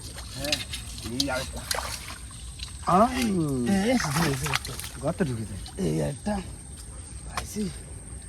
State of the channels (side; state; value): both; identical; correlation 1.00